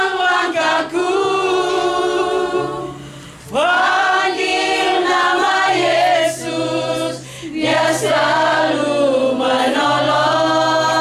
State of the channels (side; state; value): both; identical; correlation 1.00